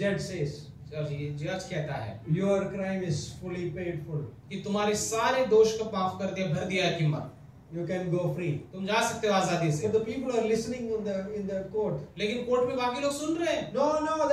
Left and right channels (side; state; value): both; identical; correlation 1.00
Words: judge says, और ये जज कहता है your crime is fully paid for. कि तुम्हारे सारे दोष को माफ कर दिया, भर दिया है कीमत। You can go free. तुम जा सकते हो आजादी से। But the people are listening in the court. लेकिन कोर्ट में बाकी लोग सुन रहे हैं। No, no,